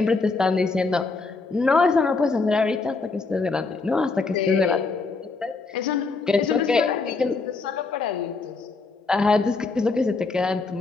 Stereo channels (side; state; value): right; quieter; 4.0 dB